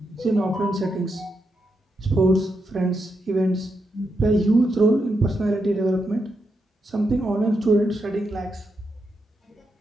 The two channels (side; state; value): both; normal; correlation 0.83